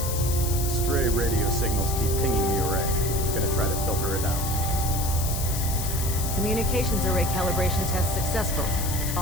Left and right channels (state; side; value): noise; left; hiss, 5 dB below the sound